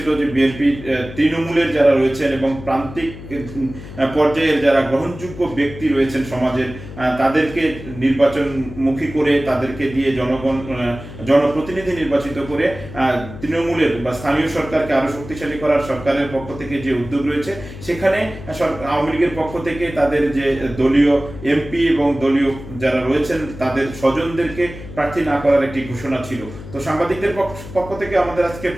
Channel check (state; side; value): noise; left; hum, 14 dB below the sound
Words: যে বিএনপি তৃণমূলের যারা রয়েছেন এবং প্রান্তিক পর্যায়ের যারা গ্রহণযোগ্য ব্যক্তি রয়েছেন সমাজের, তাদেরকে নির্বাচনমুখী করে তাদেরকে দিয়ে জনপ্রতিনিধি নির্বাচিত করে তৃণমূলের বা স্থানীয় সরকারকে আরো শক্তিশালী করার সরকারের পক্ষ থেকে যে উদ্যোগ রয়েছে, সেখানে আওয়ামী লীগের পক্ষ থেকে তাদের যে দলীয় এমপি এবং দলীয় যারা রয়েছেন তাদের স্বজনদেরকে প্রার্থী না করার একটি ঘোষণা ছিল। তো সাংবাদিকদের পক্ষ থেকে আমাদের আজকে